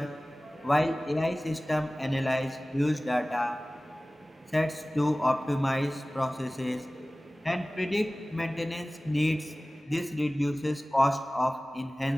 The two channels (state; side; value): normal; both; correlation 0.98